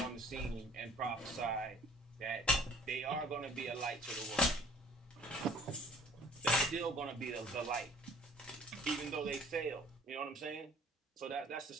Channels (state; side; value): normal; both; correlation 0.51